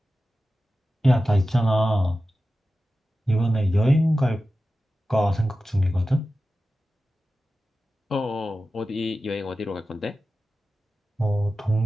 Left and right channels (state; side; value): normal; both; correlation 0.94